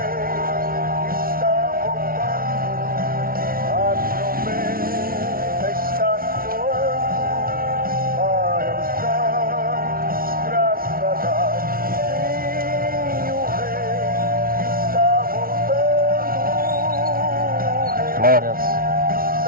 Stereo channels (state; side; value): late; left; 0.43 ms